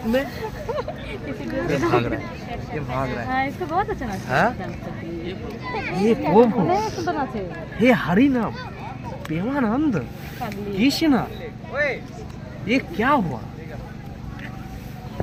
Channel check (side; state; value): both; identical; correlation 1.00